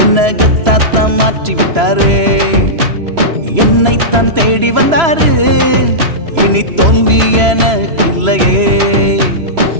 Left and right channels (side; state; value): left; late; 3.0 ms